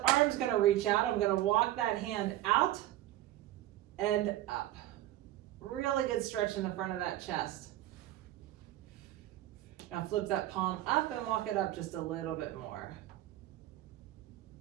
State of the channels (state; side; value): quieter; left; 14.5 dB